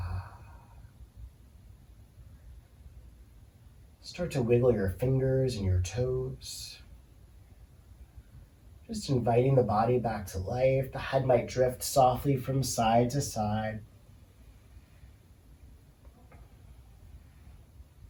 Start to wiggle your fingers and your toes. Just inviting the body back to life. The head might drift softly from side to side.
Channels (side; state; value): both; identical; correlation 1.00